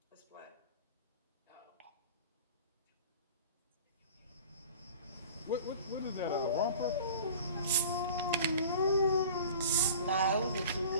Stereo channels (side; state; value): both; inverted; correlation -0.42